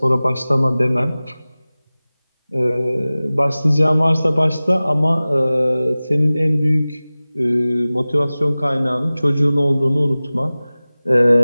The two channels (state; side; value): inverted; both; correlation -0.98